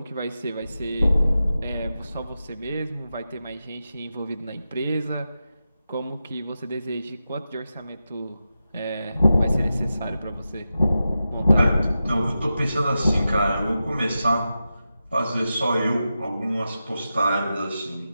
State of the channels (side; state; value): both; inverted; correlation -0.91